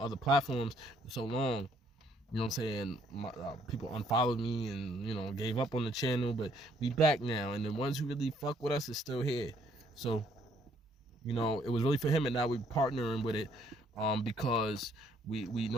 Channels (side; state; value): both; normal; correlation 0.66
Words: platforms for so long. You know what I'm saying? People unfollowed me and, gave up on the channel, but we back now. And the ones who really fuck with us is still here. So, it was really for him, and now we're partnering with it because we